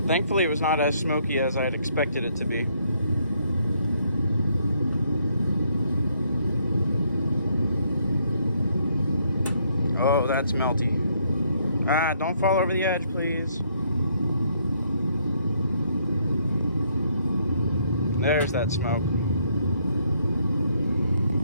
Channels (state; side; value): inverted; both; correlation -0.70